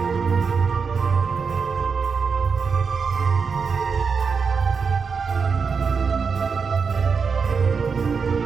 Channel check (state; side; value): quieter; left; 5.5 dB